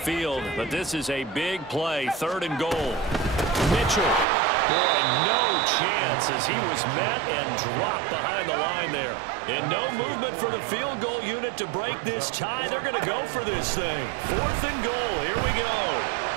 but this is a big play. 3rd and goal. Mitchell. Boy, no chance as he was met and dropped behind the line there. And no movement for the field goal unit to break this tie. They're going to go for this thing. 4th and goal. Here we go.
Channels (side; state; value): left; drops out; at 4.2 s